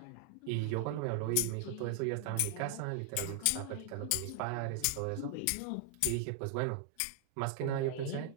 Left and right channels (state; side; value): different; both; correlation 0.00